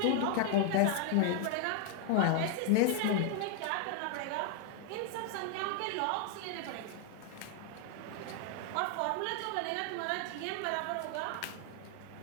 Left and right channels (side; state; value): both; different; correlation 0.00